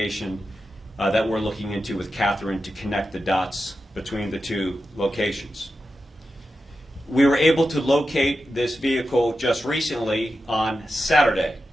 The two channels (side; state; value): both; normal; correlation 0.91